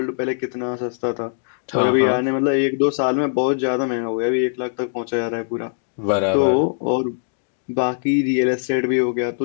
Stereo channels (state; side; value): silent; right; digital silence